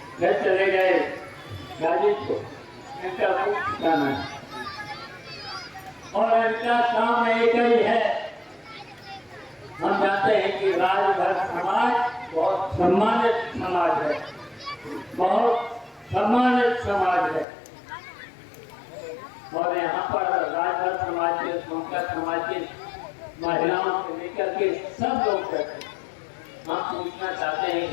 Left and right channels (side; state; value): right; drops out; at 17.4 s